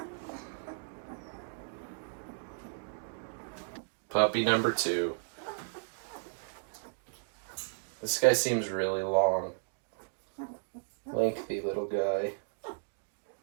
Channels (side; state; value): left; silent; digital silence